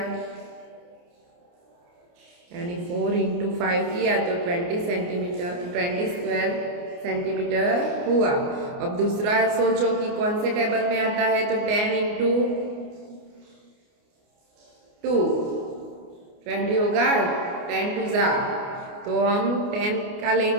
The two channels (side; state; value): left; late; 29 ms